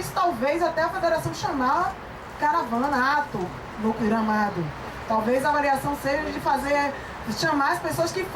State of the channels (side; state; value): both; identical; correlation 1.00